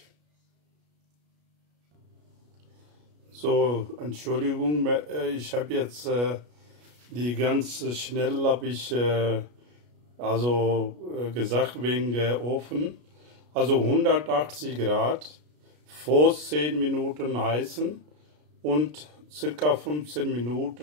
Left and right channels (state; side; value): late; left; 33 ms